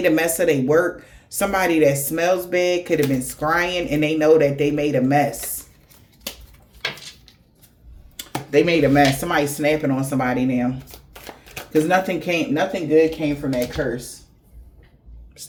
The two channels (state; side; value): identical; both; correlation 1.00